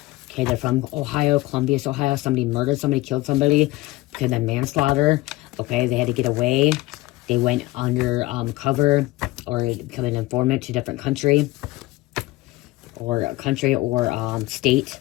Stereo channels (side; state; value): right; quieter; 19.2 dB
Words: Okay, they're from Ohio, Columbus, Ohio. Somebody murdered somebody, killed somebody. Okay, then manslaughter. Okay, they had to get away. They went under cover or become an informant to a different country. Or state,